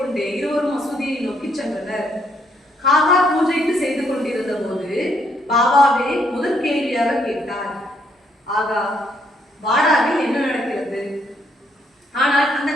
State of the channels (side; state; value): both; normal; correlation 0.71